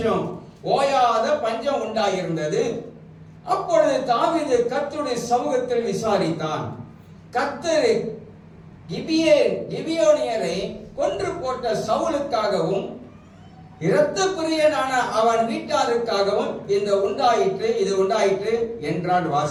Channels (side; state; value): both; identical; correlation 1.00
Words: ஓயாத பஞ்சம் உண்டாயிருந்தது. அப்பொழுது தாவீது கர்த்தருடைய சமூகத்தில் விசாரித்தான். கர்த்தர் கிபியோனியரை கொன்று போட்ட சவுலுக்காகவும் இரத்த பிரியனான அவன் வீட்டாருக்காகவும் இது உண்டாயிற்று என்றான்.